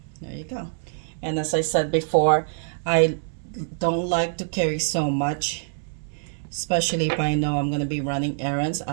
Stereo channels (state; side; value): silent; left; 62 dB below the other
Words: there you go. And as I said before, I don't like to carry so much. especially if I know I'm going to be running errands.